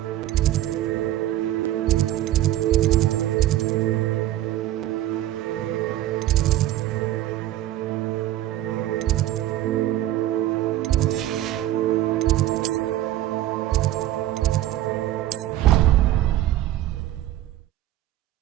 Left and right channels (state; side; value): quieter; left; 13.9 dB